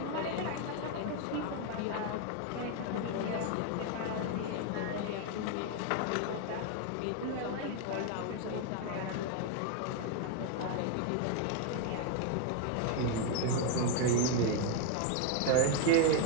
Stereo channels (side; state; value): both; different; correlation 0.01